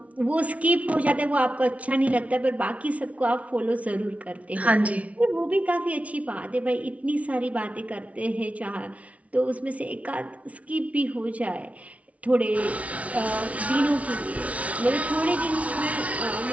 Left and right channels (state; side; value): late; left; 0.066 ms